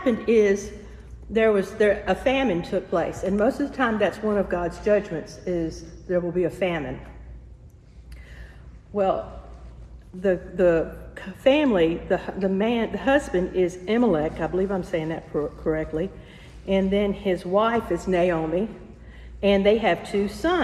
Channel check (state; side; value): identical; both; correlation 1.00